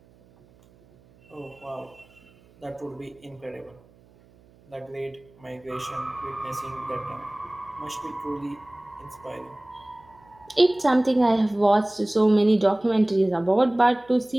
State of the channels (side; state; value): right; noise; hum, 29 dB below the sound